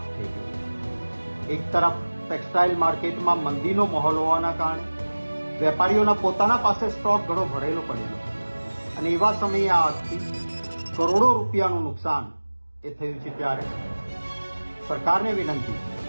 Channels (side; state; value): both; inverted; correlation -1.00